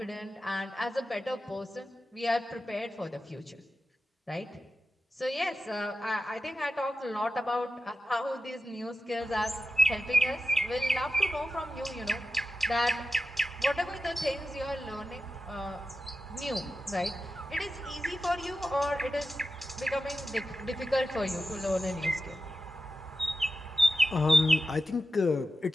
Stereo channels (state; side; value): normal; both; correlation 0.91